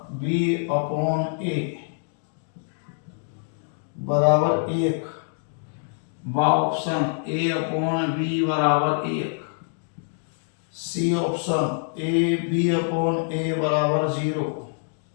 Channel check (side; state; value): right; silent; digital silence